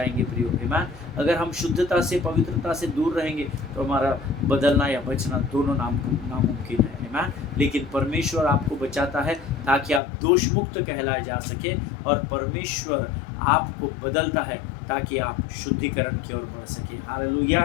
प्रियो। आमीन। अगर हम शुद्धता से, पवित्रता से दूर रहेंगे तो हमारा बदलना या बचना दोनों नामुमकिन है। आमीन। लेकिन परमेश्वर आपको बचाता है ताकि आप दोष मुक्त कहलाए जा सके, और परमेश्वर आपको बदलता है ताकि आप शुद्धिकरण की ओर बढ़ सके। हालेलुया।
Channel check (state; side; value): drops out; right; at 10.0 s